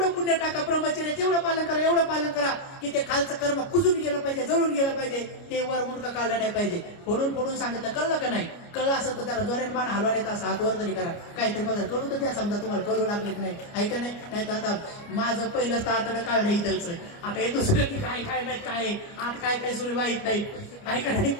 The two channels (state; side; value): late; right; 29 ms